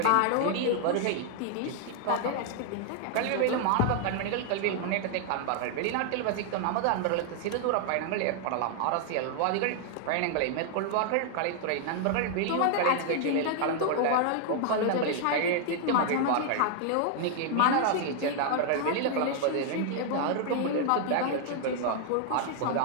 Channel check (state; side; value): different; both; correlation 0.00